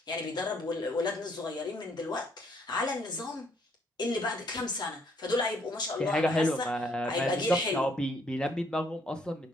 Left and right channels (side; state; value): both; normal; correlation 0.68